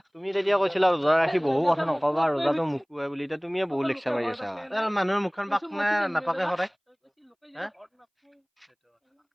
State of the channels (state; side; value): identical; both; correlation 1.00